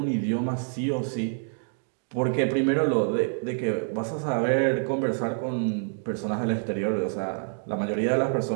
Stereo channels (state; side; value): silent; left; digital silence